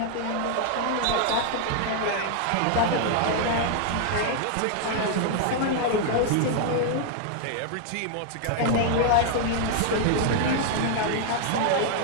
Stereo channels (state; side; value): different; both; correlation 0.00